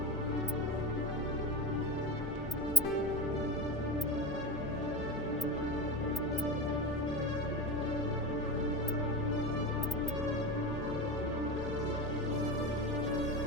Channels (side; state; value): both; normal; correlation 0.27